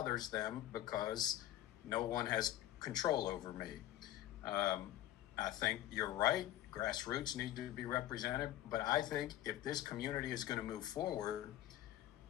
them because no one has control over me. I think you're right. Grassroots need to be represented. But I think if this community is going to move forward,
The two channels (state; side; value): quieter; right; 13.7 dB